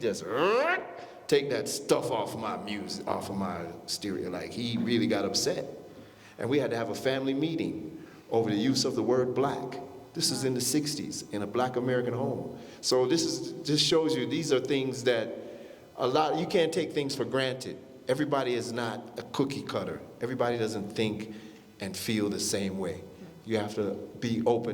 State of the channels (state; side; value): identical; both; correlation 1.00